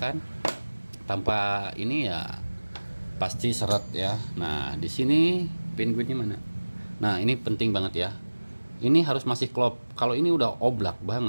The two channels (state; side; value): inverted; both; correlation -1.00